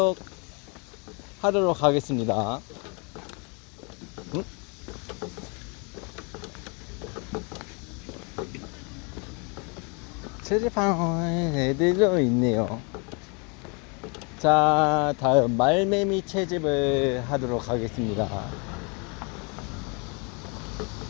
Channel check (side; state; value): right; quieter; 33.1 dB